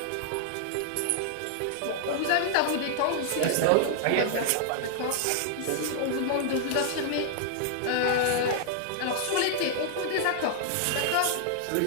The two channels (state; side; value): different; both; correlation -0.01